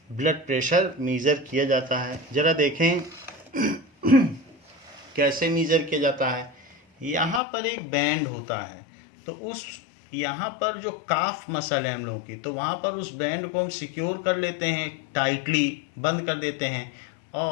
ब्लड प्रेशर मेज़र किया जाता है। ज़रा देखें कैसे मेज़र किया जाता है। यहाँ पर एक बैंड होता है, तो उस यहाँ पर जो काफ मसल है हम लोगों की, तो वहाँ पर उस बैंड को हम सिक्योर कर लेते हैं, टाइटली बंद कर देते हैं,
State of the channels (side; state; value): right; drops out; at 7.4 s